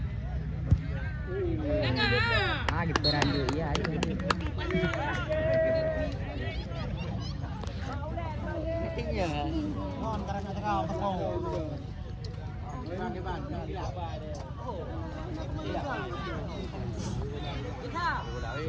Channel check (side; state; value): both; identical; correlation 1.00